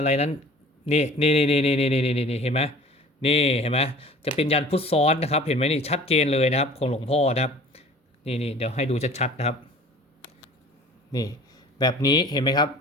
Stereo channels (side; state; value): both; normal; correlation 0.46